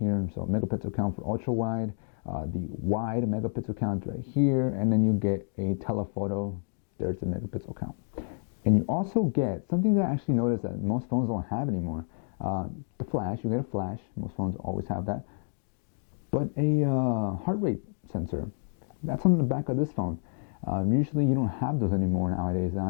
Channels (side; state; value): right; silent; digital silence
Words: So megapixel count for ultra wide, the wide megapixel count right here, and then you get a telephoto. There's the megapixel count. And you also get something that I actually noticed that most phones don't have anymore. The flash, you get a flash. Most phones always have that. But a heart rate sensor. That's on the back of this phone. Usually you don't have those anymore nowadays.